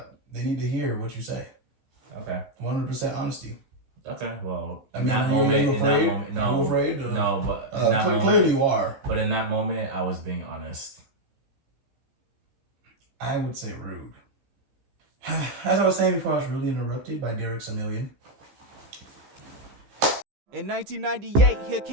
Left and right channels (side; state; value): left; late; 15 ms